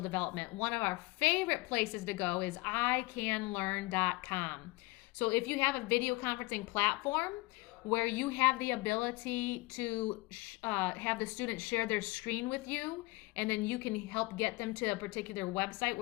development. One of our favorite places to go is icanlearn.com. So if you have a video conferencing platform where you have the ability to have the students share their screen with you, and then you can help get them to a particular website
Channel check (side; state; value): right; quieter; 23.0 dB